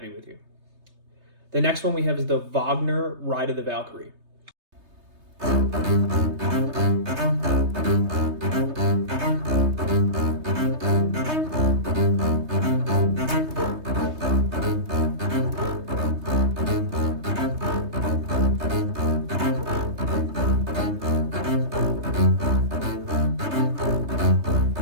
with you. The next one we have is the Wagner Ride of the Valkyrie.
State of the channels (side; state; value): left; late; 3.3 ms